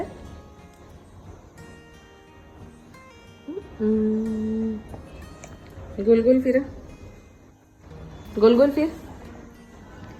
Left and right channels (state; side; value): identical; both; correlation 1.00